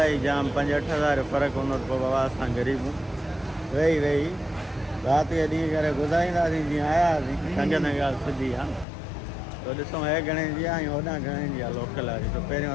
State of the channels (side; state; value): right; drops out; at 8.8 s